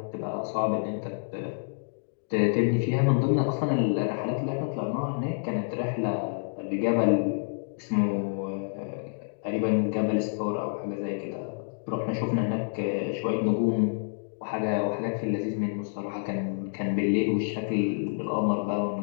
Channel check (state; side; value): silent; right; digital silence